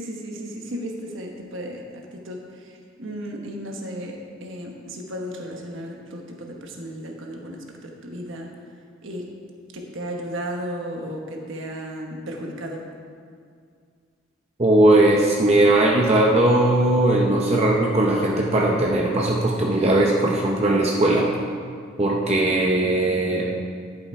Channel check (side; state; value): both; normal; correlation 0.55